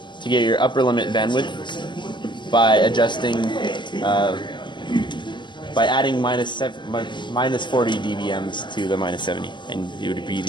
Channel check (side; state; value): right; late; 0.22 ms